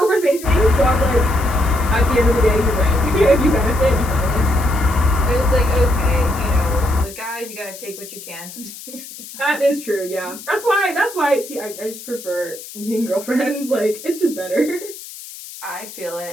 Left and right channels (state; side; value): noise; left; hiss, 14 dB below the sound